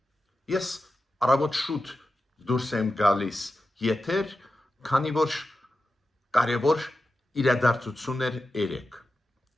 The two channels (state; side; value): normal; both; correlation 0.91